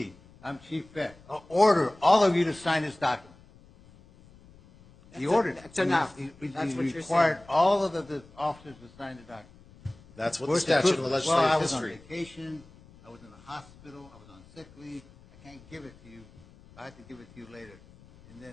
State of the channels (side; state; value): left; noise; rumble, 24 dB below the sound